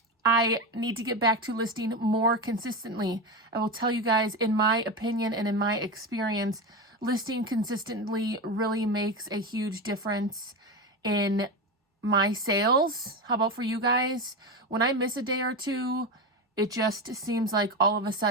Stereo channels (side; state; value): both; normal; correlation 0.18